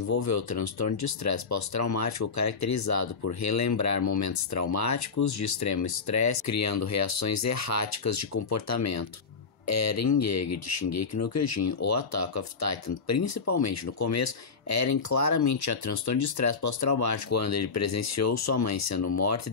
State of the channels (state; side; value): quieter; right; 5.0 dB